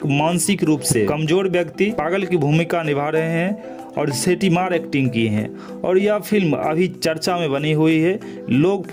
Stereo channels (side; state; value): both; identical; correlation 1.00